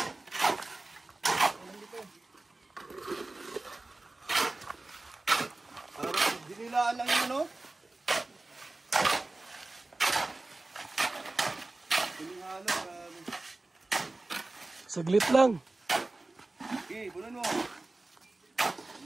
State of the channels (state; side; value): quieter; left; 3.0 dB